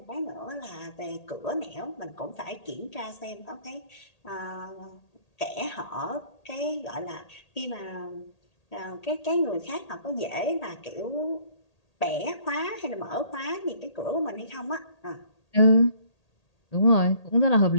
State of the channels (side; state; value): right; late; 1.8 ms